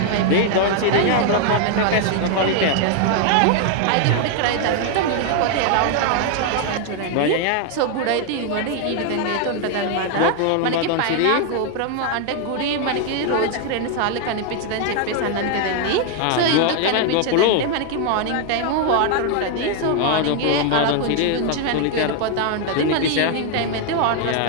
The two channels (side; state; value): both; different; correlation 0.00